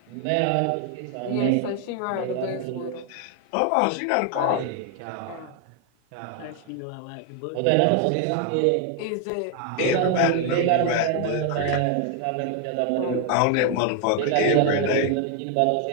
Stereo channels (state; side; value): different; both; correlation 0.00